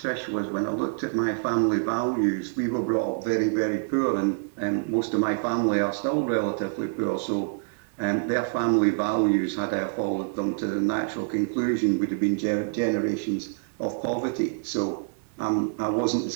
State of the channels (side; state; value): left; silent; digital silence